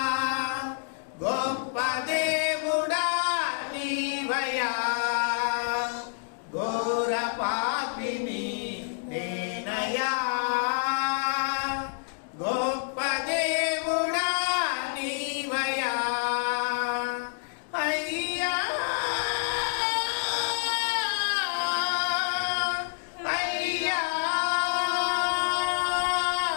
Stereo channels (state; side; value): silent; right; digital silence